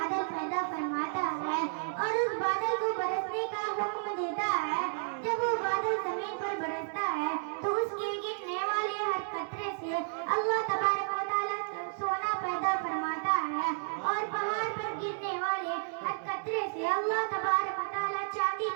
پیدا فرماتا ہے اور اس بادل کو برسنے کا حکم دیتا ہے جب وہ بادل زمین پر برستا ہے تو اس کے گرنے والے ہر قطرے سے اللہ تبارک و تعالی سونا پیدا فرماتا ہے اور پہاڑ پر گرنے والے ہر قطرے سے اللہ تبارک و تعالی چاندی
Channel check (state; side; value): silent; left; digital silence